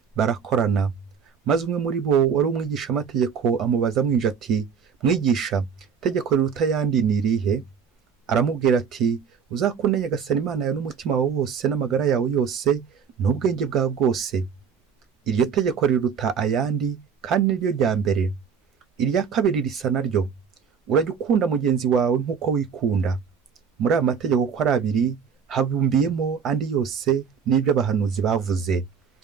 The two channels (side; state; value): left; quieter; 6.7 dB